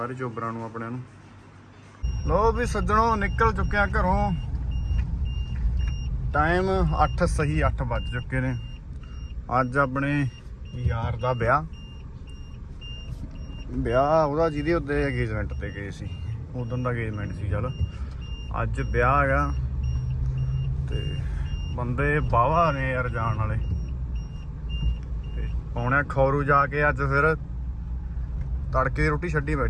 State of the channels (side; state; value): both; identical; correlation 1.00